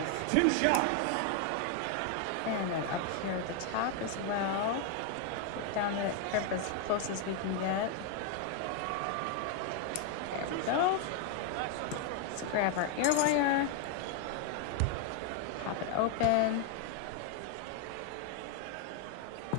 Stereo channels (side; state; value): both; different; correlation 0.00